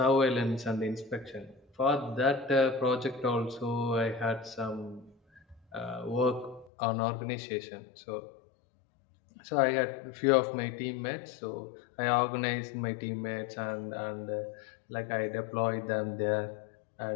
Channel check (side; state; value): right; drops out; at 6.7 s